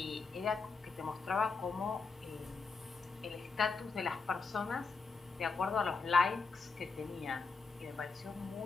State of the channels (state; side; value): quieter; right; 4.5 dB